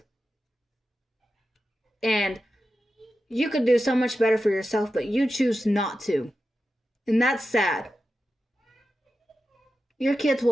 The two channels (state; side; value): normal; both; correlation 0.91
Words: And you could do so much better for yourself, but you choose not to. And that's sad. Your kids